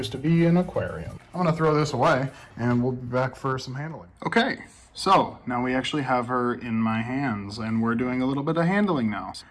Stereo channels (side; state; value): both; identical; correlation 1.00